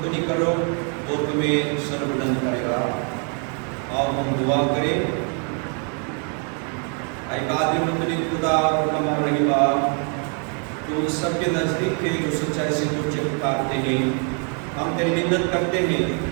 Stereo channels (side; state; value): left; quieter; 39.9 dB